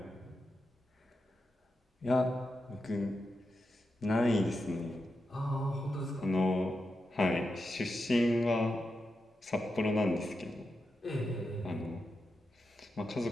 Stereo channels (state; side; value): normal; both; correlation 0.88